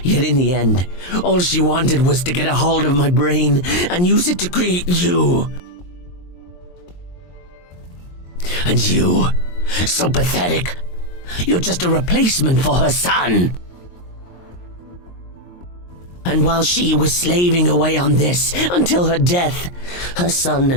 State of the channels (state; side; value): late; right; 23 ms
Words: Yet in the end, all she wanted was to get a hold of my brain and use it to create you. And you, so pathetic. You're just a replacement for her son. And while she was slaving away on this until her death, her son